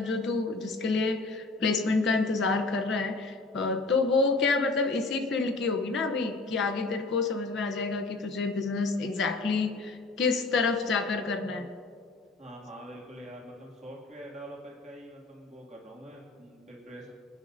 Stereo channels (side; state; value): right; quieter; 3.5 dB